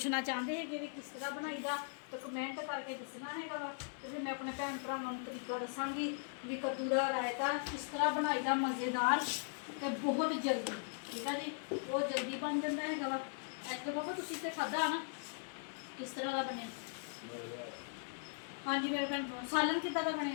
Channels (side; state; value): right; silent; 52 dB below the other